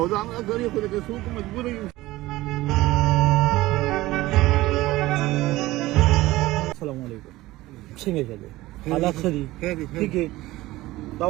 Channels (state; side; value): quieter; left; 18.0 dB